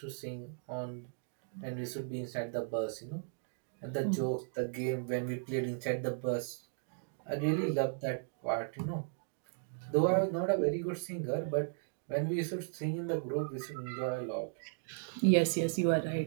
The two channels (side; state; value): left; silent; digital silence